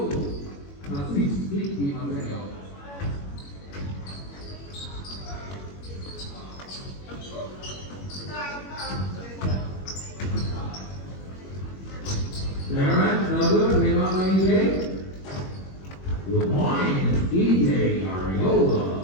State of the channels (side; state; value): right; late; 21 ms